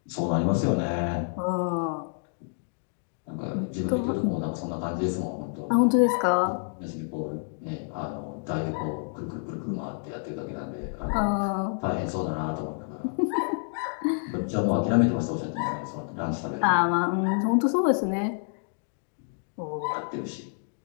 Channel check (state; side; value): silent; right; digital silence